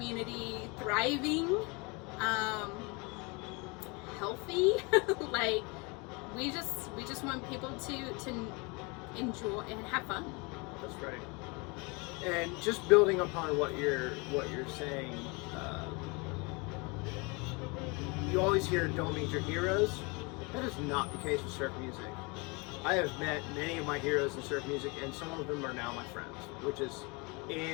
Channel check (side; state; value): right; quieter; 28.9 dB